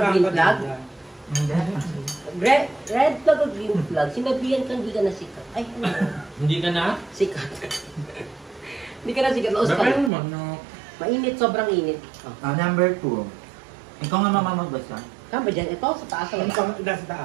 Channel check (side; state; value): left; drops out; at 10.1 s